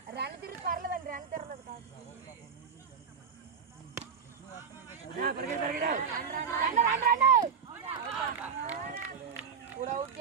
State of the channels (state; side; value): quieter; left; 6.5 dB